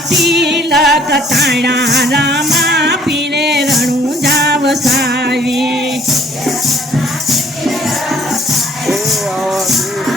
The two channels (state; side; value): normal; both; correlation 0.59